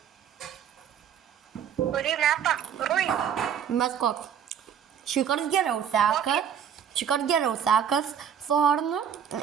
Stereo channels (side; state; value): left; quieter; 8.5 dB